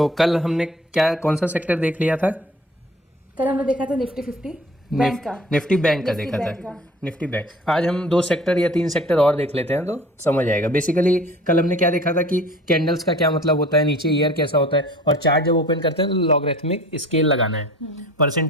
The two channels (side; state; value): both; normal; correlation 0.46